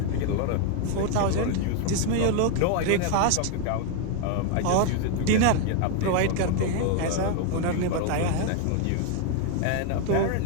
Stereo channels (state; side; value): different; both; correlation 0.01